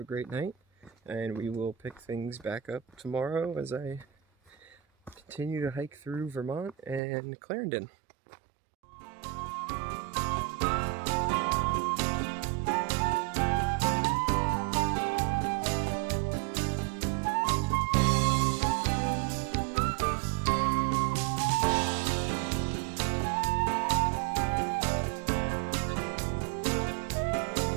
great night. And we will pick things back up tomorrow as I continue to hike through Vermont and Clarendon.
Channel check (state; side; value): drops out; left; at 7.0 s